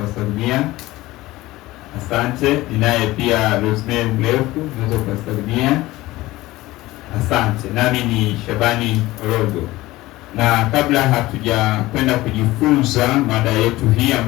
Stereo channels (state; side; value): quieter; right; 18.2 dB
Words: Asante. Ninaye pia Rosemary Mlefu, naweza kuwasalimia. Asante. Nami ni Shabani Orogo. Na kabla hatuja kwenda kujifunza mada yetu hii